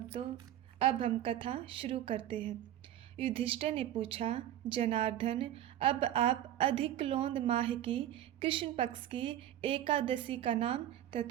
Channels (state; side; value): quieter; left; 12.2 dB